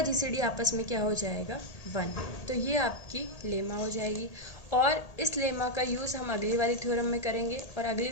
जीसीडी आपस में क्या हो जाएगा, 1। तो ये आपकी लेमा हो जाएगी। और इस लेमा का यूज़ हम अगली वाली थ्योरम में करेंगे। और अगली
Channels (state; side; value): late; right; 1.8 ms